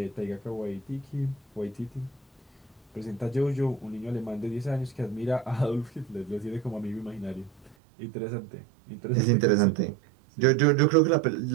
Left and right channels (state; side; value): drops out; left; at 7.8 s